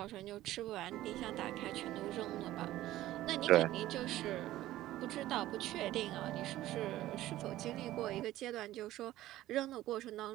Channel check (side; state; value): left; quieter; 15.1 dB